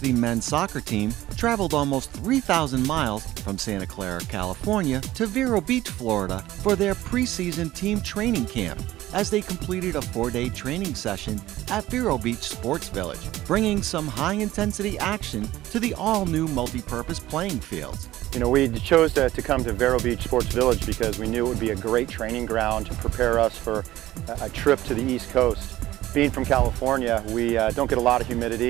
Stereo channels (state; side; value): quieter; left; 15.5 dB